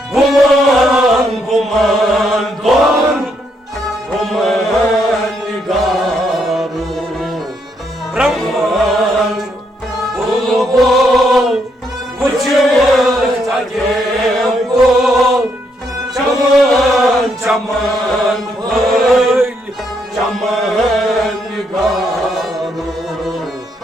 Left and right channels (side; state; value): both; normal; correlation 0.75